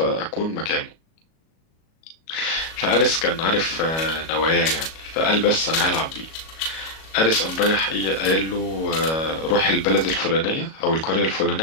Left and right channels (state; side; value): late; right; 37 ms